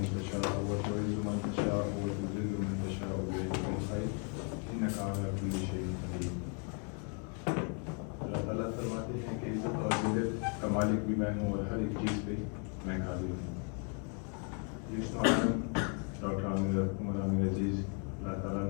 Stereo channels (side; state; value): right; quieter; 39.7 dB